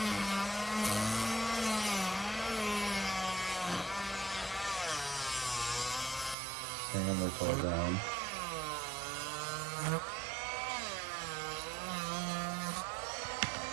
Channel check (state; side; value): drops out; left; at 6.4 s